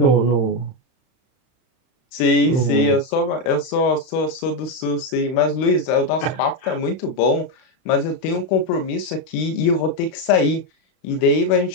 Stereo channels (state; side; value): late; right; 31 ms